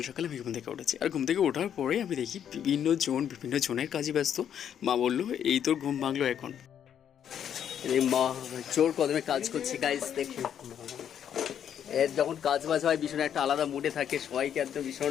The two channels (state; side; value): quieter; right; 9.2 dB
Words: সকাল আমি ঘুম থেকে উঠেছি, আর ঘুম থেকে ওঠার পরে আমি দেখি বিভিন্ন জনের কাজে ব্যস্ত। মা বললো এই তোর ঘুম ভাঙলো এখন। মা জোর কদমে কাজ করছি গাইস, দেখুন এর যখন কাজ বাজ হয় ভীষণ একটা আলাদা মুডে থাকে, সবাইকে একদম